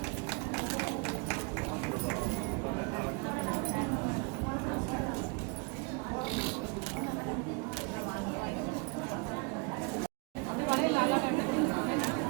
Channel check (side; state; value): left; quieter; 30.7 dB